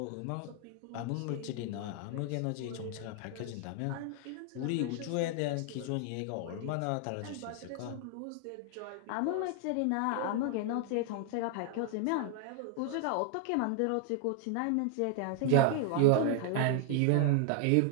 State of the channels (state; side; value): different; both; correlation 0.00